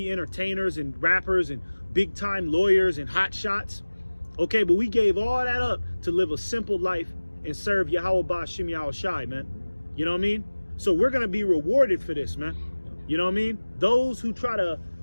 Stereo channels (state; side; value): inverted; both; correlation -1.00